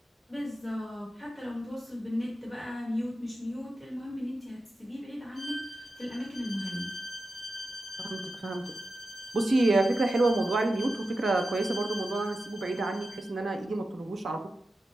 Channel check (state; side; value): normal; both; correlation 0.92